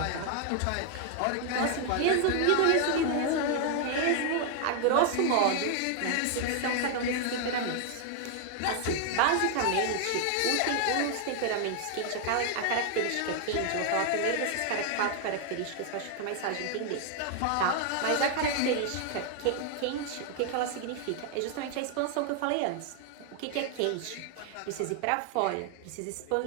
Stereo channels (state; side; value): different; both; correlation 0.00